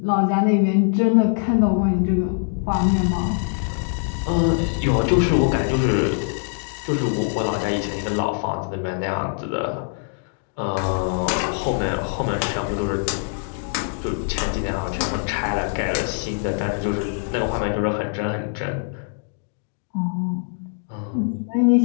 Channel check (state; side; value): silent; right; 62 dB below the other